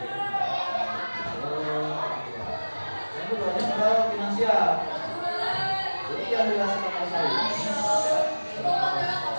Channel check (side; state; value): both; inverted; correlation -1.00